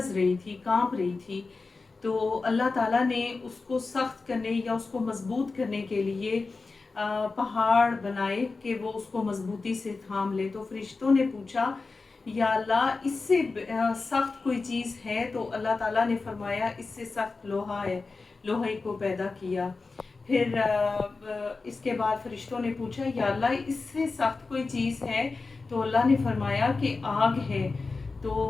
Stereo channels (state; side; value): quieter; right; 4.0 dB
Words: رہی تھی، کانپ رہی تھی، تو اللہ تعالیٰ نے اس کو سخت کرنے یا اس کو مضبوط کرنے کے لیے پہاڑ بنائے کہ وہ اس کو مضبوطی سے تھام لے۔ تو فرشتوں نے پوچھا یا اللہ اس سے سخت کوئی چیز ہے؟ تو اللہ تعالیٰ نے فرمایا اس سے سخت لوہا ہے، لوہے کو پیدا کیا۔ پھر اس کے بعد فرشتوں نے پوچھا یا اللہ اس سے سخت کوئی چیز ہے؟ تو اللہ نے فرمایا کہ آگ ہے۔